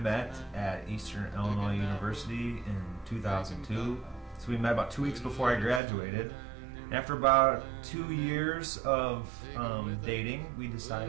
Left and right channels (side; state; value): left; drops out; at 5.8 s